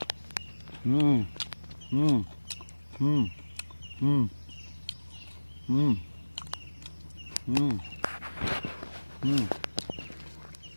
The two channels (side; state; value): both; inverted; correlation -1.00